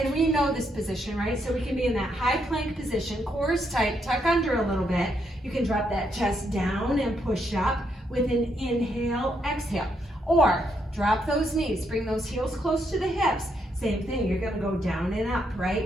we know this position, right? So we can be in that high plank position, core is tight, tuck under a little bit. You can drop that chest down and push up with an inhale, exhale. Or drop those knees, bring those heels close to the hips. Same thing, you're gonna go down and up,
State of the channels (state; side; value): normal; both; correlation 0.77